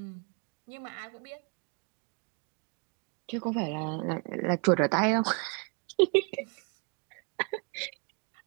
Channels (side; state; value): left; quieter; 37.6 dB